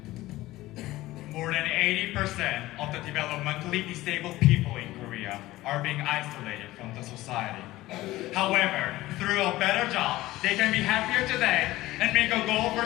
More than 80% of the developmentally disabled people in Korea are being isolated from the society. However, through a better job, they can be happier today and make a goal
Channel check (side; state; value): right; quieter; 17.3 dB